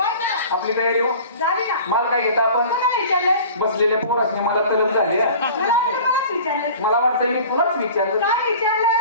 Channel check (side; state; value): both; inverted; correlation -0.42